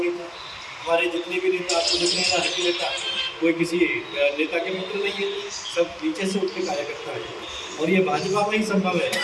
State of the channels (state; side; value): identical; both; correlation 1.00